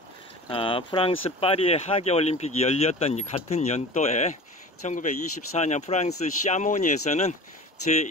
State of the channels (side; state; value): both; normal; correlation 0.37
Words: 프랑스 파리의 하계 올림픽이 열렸던 같은 연도에 1924년 프랑스 샤모니에서는